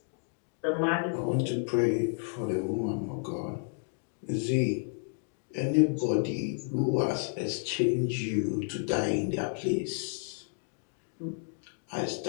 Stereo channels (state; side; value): silent; right; digital silence